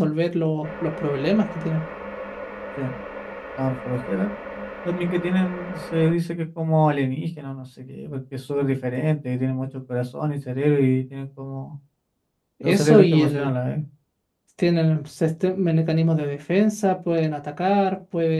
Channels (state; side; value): identical; both; correlation 1.00